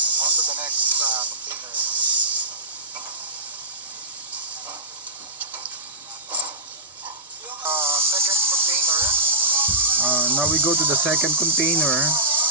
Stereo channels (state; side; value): normal; both; correlation -0.17